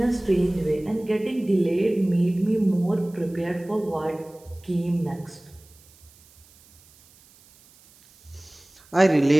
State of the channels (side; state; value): right; noise; hiss, 28 dB below the sound